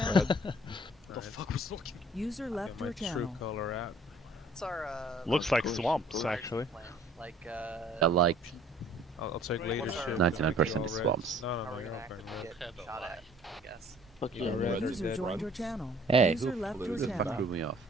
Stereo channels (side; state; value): both; normal; correlation 0.55